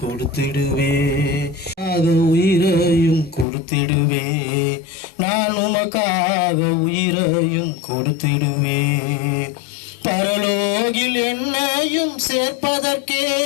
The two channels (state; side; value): drops out; right; at 3.5 s